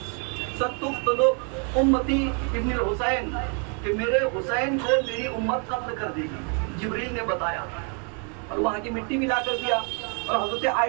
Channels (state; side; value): quieter; left; 39.3 dB